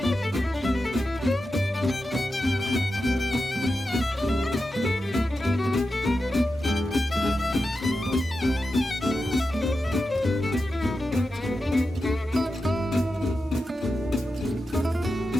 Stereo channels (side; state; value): both; normal; correlation 0.90